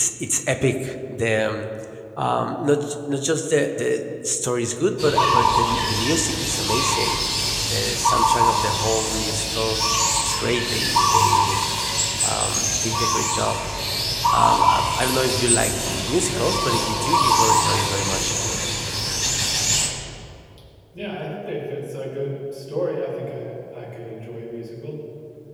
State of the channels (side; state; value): both; identical; correlation 1.00